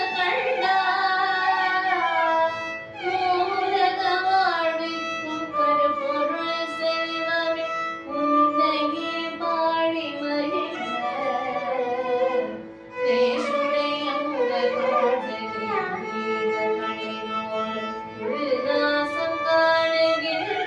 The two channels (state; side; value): identical; both; correlation 1.00